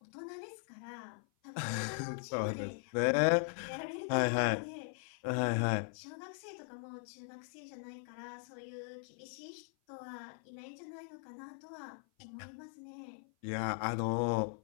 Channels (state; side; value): silent; right; 52 dB below the other